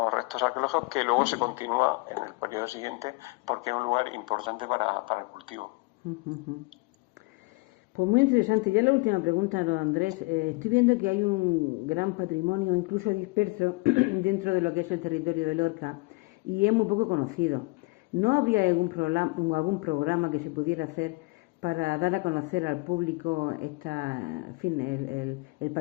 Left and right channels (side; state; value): right; quieter; 27.4 dB